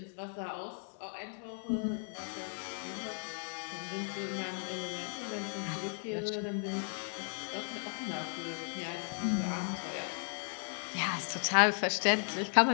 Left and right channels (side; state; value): right; silent; 54 dB below the other